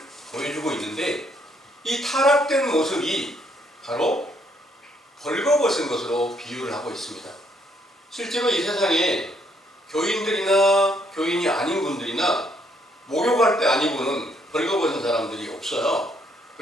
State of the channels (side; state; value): both; normal; correlation 0.70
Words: 보여주고 있는데 이 타락된 모습이 바로 벌거벗은 것으로 비유를 하고 있습니다. 실제로 이 세상에 교인들이나 교인이 아닌 분들이나 목욕할 때 아니고는 벌거벗은 사람들이 없어요.